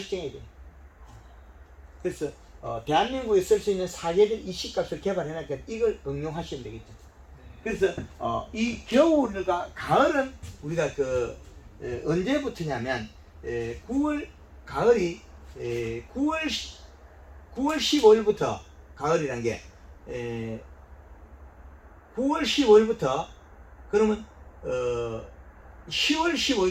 돼요. 그래서 대한민국에 쓸 수 있는 사계절 이 씨값을 개발해놨기 이걸 응용하시면 되겠죠. 그래서 이 겨울과 가을은 우리가 언제부터냐면 9월 가을이 9월 15일부터 가을이란 게 9월 15일부터 그러면 10월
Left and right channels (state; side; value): identical; both; correlation 1.00